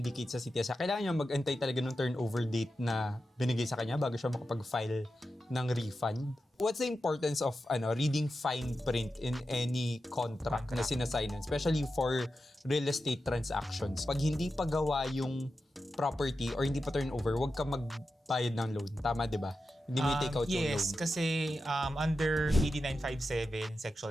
sa CTS, kailangan niya mag-antay talaga ng turnover date na binigay sa kanya bago siya makapag-file ng refund. What's the importance of reading fine print in any contract na sinasignan, especially for real estate transactions? Pag hindi pa gawa yung property or hindi pa turnover, huwag ka magbayad ng loan. Tama, di ba? Hindi mo take out yung loan. Yes, kasi under AD 957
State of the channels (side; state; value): both; normal; correlation 0.90